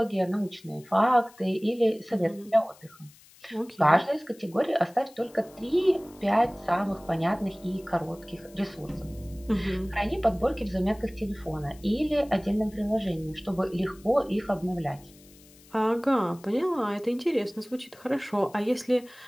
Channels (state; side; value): noise; left; hiss, 25 dB below the sound